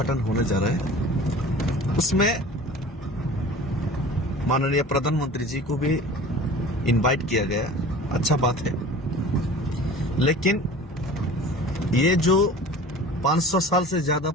होने जा रहा है। उसमें माननीय प्रधानमंत्री जी को भी इनवाइट किया गया। अच्छा बात है, लेकिन ये जो 500 साल से ज्यादा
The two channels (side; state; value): both; normal; correlation 0.41